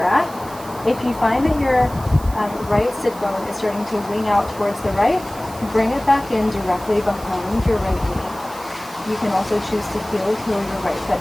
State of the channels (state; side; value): noise; right; hiss, 18 dB below the sound